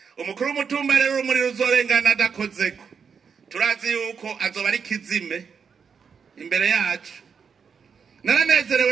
Umukuru w'umutumba rero urumuri ruzorengana adakozeko turazi yuko azoba ari kizime imbere yacu. Naranezerewe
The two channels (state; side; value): quieter; left; 6.3 dB